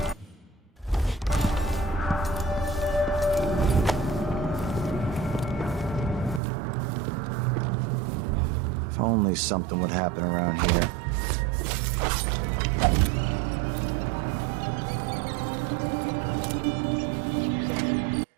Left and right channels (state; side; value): drops out; left; at 6.4 s